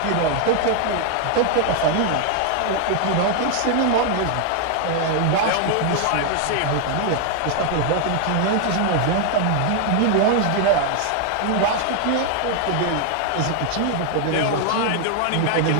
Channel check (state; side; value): different; both; correlation 0.00